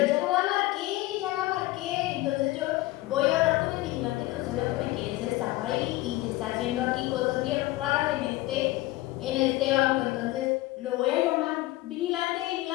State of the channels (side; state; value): right; quieter; 18.4 dB